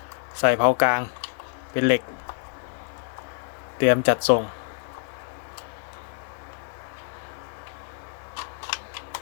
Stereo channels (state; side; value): silent; right; 59 dB below the other